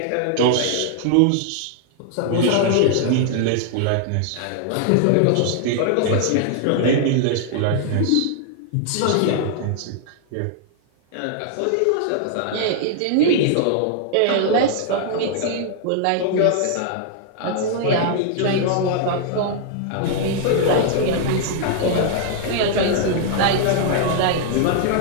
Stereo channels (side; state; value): both; different; correlation -0.01